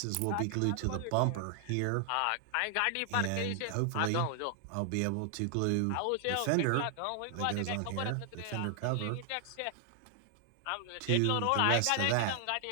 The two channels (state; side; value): different; both; correlation 0.00